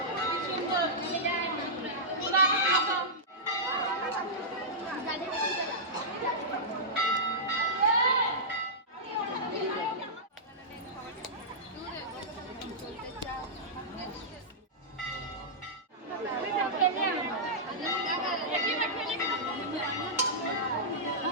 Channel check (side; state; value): both; normal; correlation -0.13